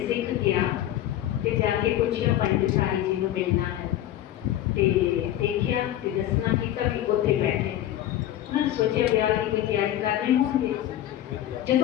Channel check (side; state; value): right; quieter; 12.8 dB